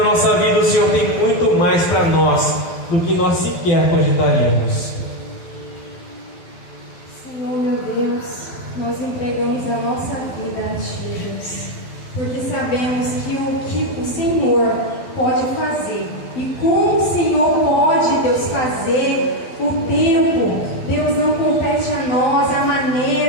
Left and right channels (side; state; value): right; late; 12 ms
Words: nossa vida. O Senhor tem muito mais para nós do que nós sequer cogitaríamos. Senhor, meu Deus, nós entregamos a nossa vida a Ti, Deus, porque sabemos que o Senhor pode fazer, e como o Senhor pode, Deus, fazer o tempo, Deus, não compete a nós a